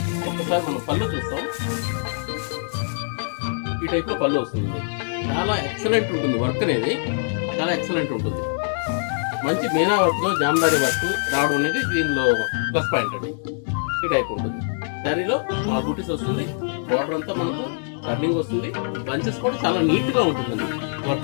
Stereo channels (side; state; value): right; silent; 63 dB below the other